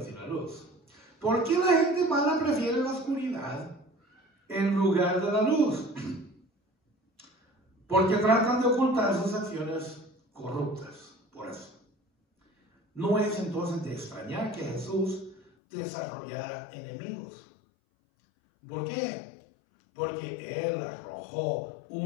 y la luz. ¿Por qué la gente mala prefiere la oscuridad en lugar de la luz? Porque tratan de ocultar sus acciones corruptas. Por eso. No es entonces de extrañar que Jesús desarrollara enemigos. ¿Por qué? Porque Él arrojó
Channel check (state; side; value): drops out; right; at 15.5 s